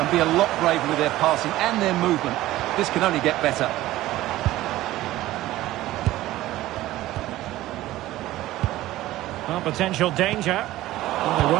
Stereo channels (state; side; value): quieter; left; 15.9 dB